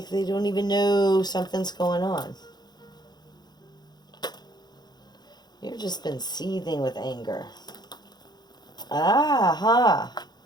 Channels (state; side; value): late; right; 0.20 ms